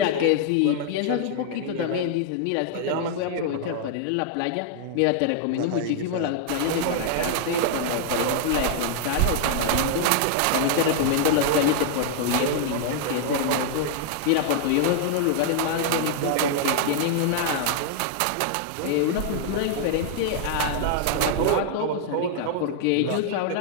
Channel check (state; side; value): different; both; correlation -0.01